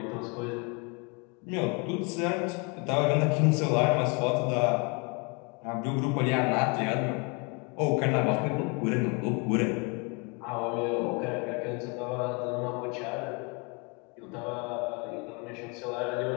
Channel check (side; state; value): right; quieter; 31.9 dB